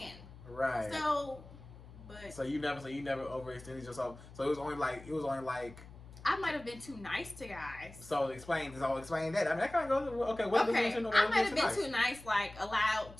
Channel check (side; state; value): left; noise; hum, 18 dB below the sound